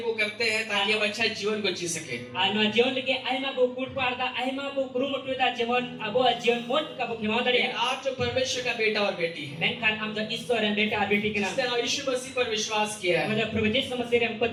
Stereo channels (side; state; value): both; identical; correlation 1.00